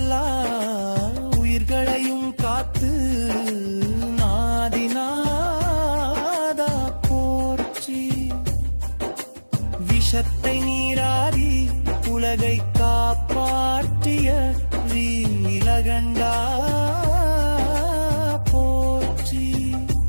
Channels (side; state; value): both; inverted; correlation -1.00